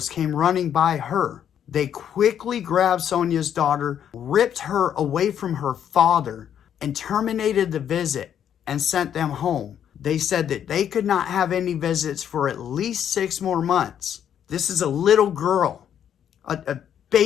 came running by her. They quickly grabbed Sonia's daughter, ripped her away from her father, and terminated the visit and sent them home. They said that they could not have any visits for at least 6 more months. This is a little girl, a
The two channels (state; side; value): quieter; right; 9.3 dB